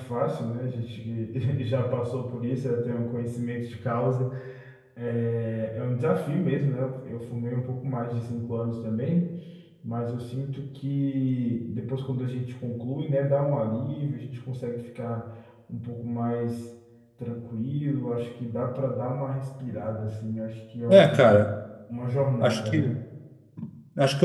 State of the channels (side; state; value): both; identical; correlation 1.00